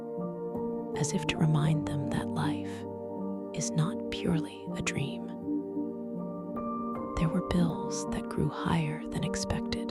as if to remind them that life is not purely a dream. There were bills that grew higher than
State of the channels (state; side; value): identical; both; correlation 1.00